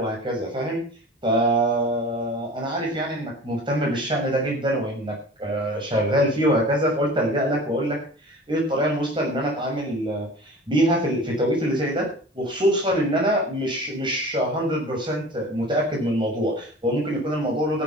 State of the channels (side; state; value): both; normal; correlation 0.40